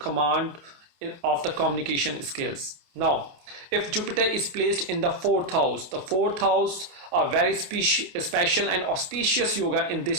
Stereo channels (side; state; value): left; late; 28 ms